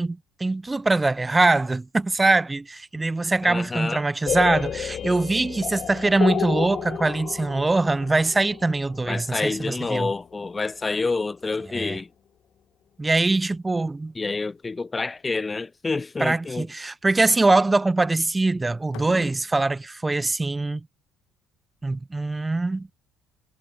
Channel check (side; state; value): both; normal; correlation 0.96